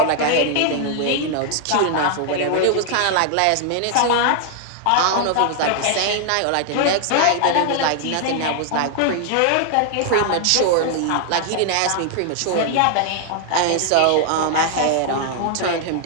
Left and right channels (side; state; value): both; different; correlation 0.00